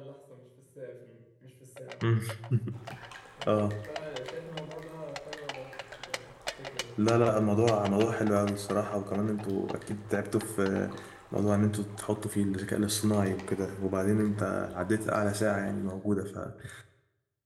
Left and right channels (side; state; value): both; identical; correlation 1.00